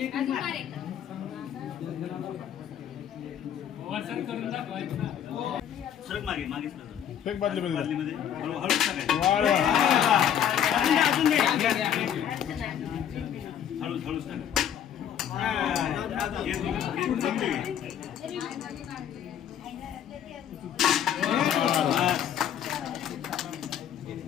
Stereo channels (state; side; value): quieter; right; 9.5 dB